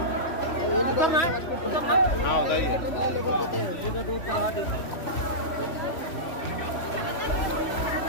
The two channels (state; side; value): late; right; 3.1 ms